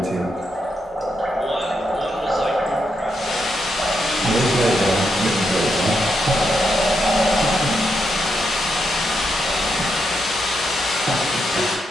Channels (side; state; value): both; normal; correlation 0.82